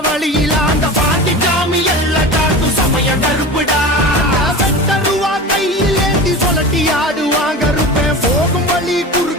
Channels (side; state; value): both; normal; correlation 0.32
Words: வழியில அந்த பாண்டி சாமி எல்ல காக்கும் சமய கருப்புடா. வெட்டருவா கையில் ஏந்தி சொல்லட்டி ஆடுவாங்க கருப்பேன் போகும் வழி